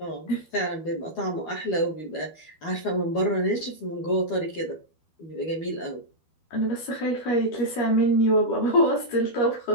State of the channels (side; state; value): right; late; 12 ms